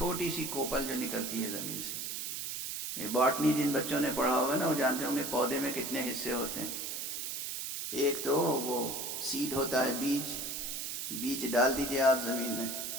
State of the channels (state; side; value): noise; right; hiss, 4 dB below the sound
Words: سی کوپل جو نکلتی ہے زمین سے۔ یہ باٹنی جن بچوں نے پڑھا ہوگا نا، وہ جانتے ہوں گے پودے میں کتنے حصے ہوتے ہیں۔ ایک تو وہ سیڈ ہوتا ہے، بیج ڈال دیجئے آپ زمین میں،